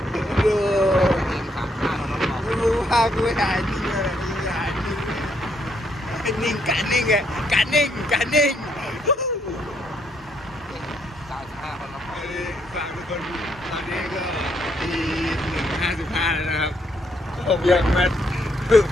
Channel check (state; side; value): normal; both; correlation 0.73